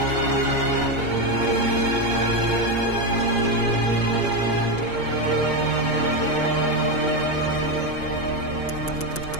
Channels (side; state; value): right; late; 5.5 ms